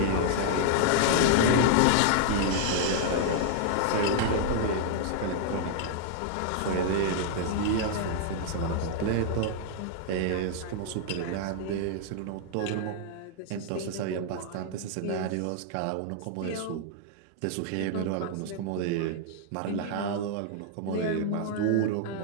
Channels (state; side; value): different; both; correlation -0.01